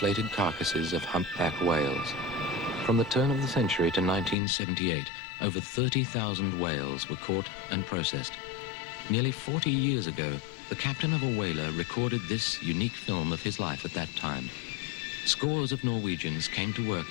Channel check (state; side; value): drops out; right; at 4.4 s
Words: carcasses of humpback whales. From the turn of the century to 1978, over 30,000 whales were caught and processed. Nearly 40 years ago, the captain of a whaler recorded this unique film of his life at that time. Scores of Norwegians came to work